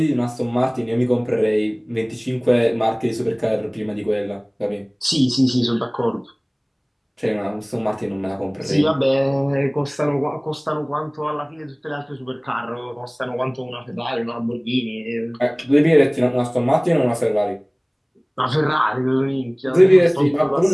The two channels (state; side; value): identical; both; correlation 1.00